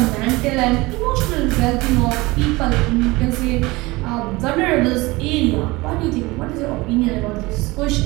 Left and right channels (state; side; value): quieter; left; 22.0 dB